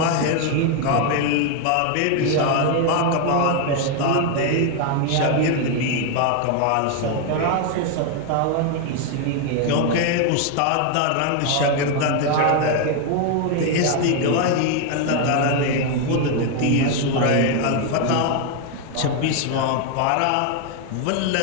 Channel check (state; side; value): different; both; correlation 0.01